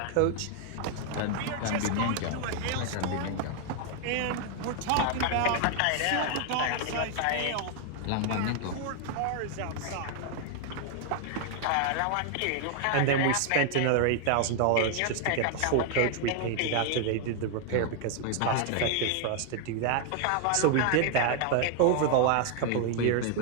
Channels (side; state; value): both; different; correlation 0.00